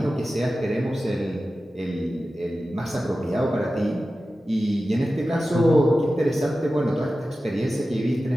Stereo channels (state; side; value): normal; both; correlation 0.94